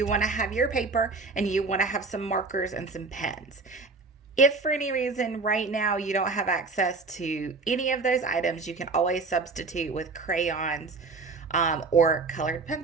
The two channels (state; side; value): quieter; left; 4.0 dB